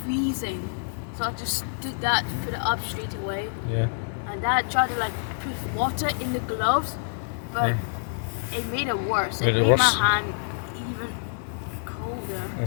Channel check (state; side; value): silent; right; digital silence